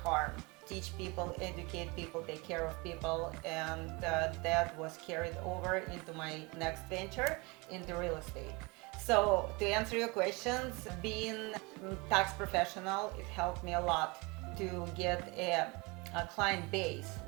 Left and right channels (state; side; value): quieter; left; 26.8 dB